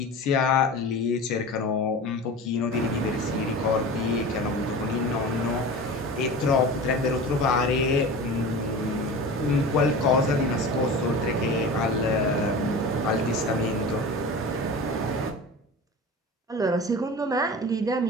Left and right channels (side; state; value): both; normal; correlation 0.33